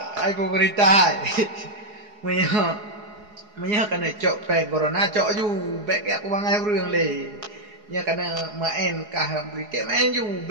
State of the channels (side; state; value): left; late; 4.8 ms